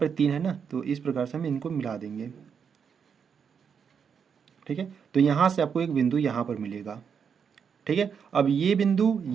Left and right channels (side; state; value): left; quieter; 6.9 dB